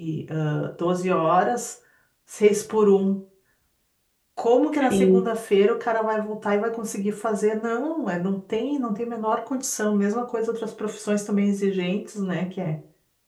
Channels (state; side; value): identical; both; correlation 1.00